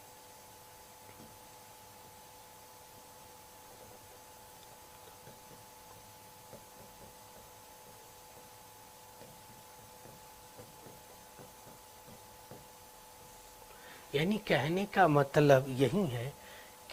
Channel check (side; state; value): both; identical; correlation 1.00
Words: यानी कहने का मतलब यही है